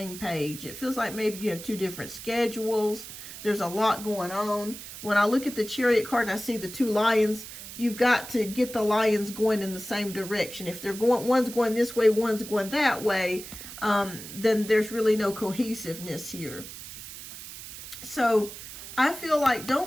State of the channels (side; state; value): right; noise; hiss, 12 dB below the sound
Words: page. It feels like maybe you have two different schedules. There's a lot going on. When I look at the Chariot card and I see the two lions, you've got to get the lions going in the same direction. If they're going, one's going this way, one's going that way, then there's really no cohesiveness here. So I feel like